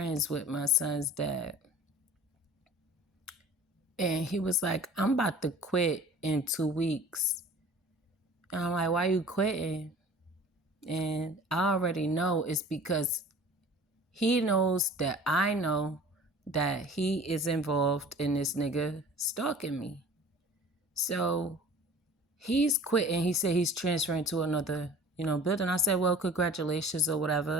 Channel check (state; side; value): normal; both; correlation 0.44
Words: with my son's dad. And he was like, I'm about to quit in 2 weeks. And I'm like, why you quitting? And I already know it's because he knows that I know that he is involved in this nigga stalking me. So he's quitting. He said he's transferring to another, building. I said, well, congratulations or